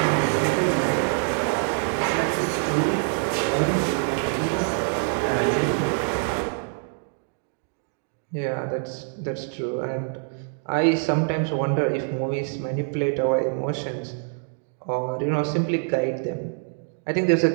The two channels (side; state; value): left; silent; 59 dB below the other